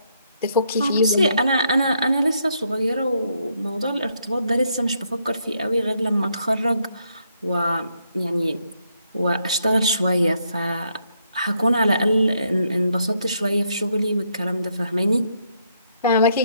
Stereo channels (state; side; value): inverted; both; correlation -0.74